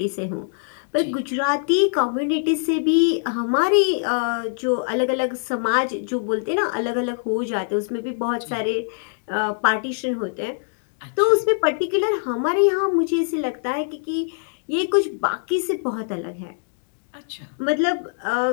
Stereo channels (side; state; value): right; silent; digital silence